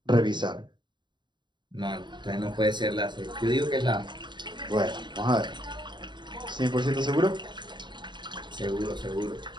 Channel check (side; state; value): left; late; 0.22 ms